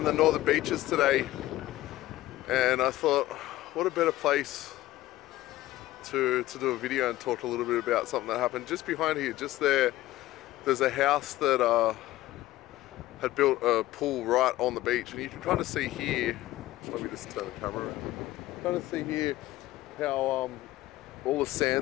the northern beaches today, and I thought, what a better place to do a video and talk a little bit about something that happened just behind here. Just there's a house that had built a pool right on the beach, and you can kind of see here, let me just turn the camera around, kind of see here how all the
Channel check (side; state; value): right; quieter; 16.0 dB